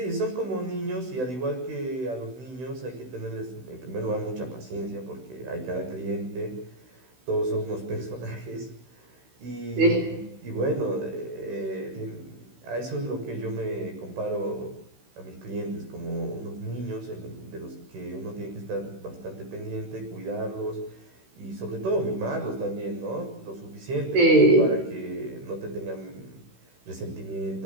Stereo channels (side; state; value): left; late; 16 ms